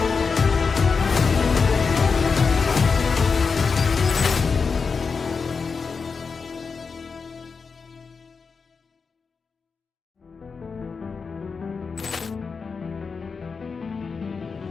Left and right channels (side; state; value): right; quieter; 5.1 dB